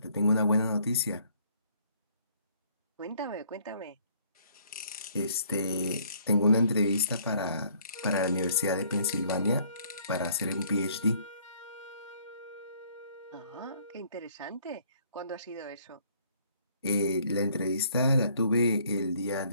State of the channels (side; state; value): both; inverted; correlation -0.62